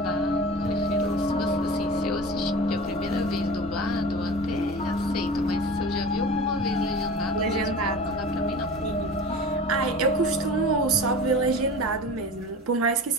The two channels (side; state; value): both; normal; correlation 0.35